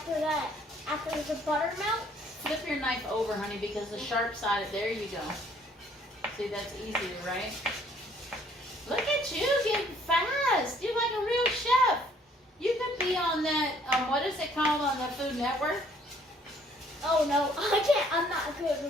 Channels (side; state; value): both; normal; correlation 0.61